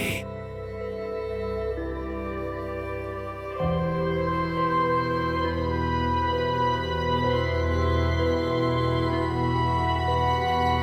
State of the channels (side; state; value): both; identical; correlation 1.00